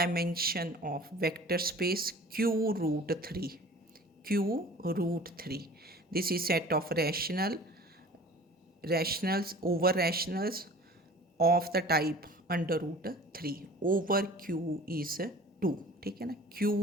of vector space q root 3. This is set of rationals over rationals of the type under root 3 over q is 2. ठीक है ना, q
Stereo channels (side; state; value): both; normal; correlation 0.44